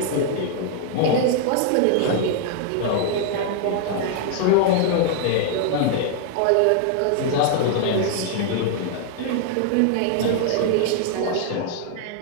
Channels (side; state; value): both; different; correlation 0.00